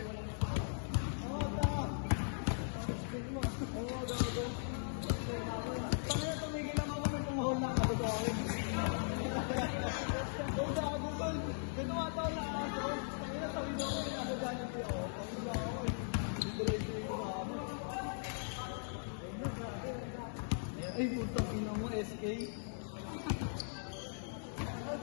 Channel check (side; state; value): right; silent; digital silence